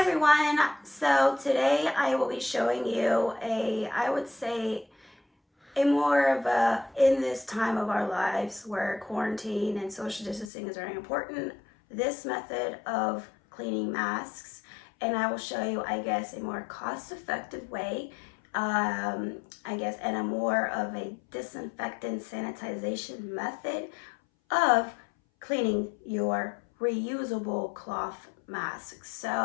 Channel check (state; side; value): drops out; right; at 10.5 s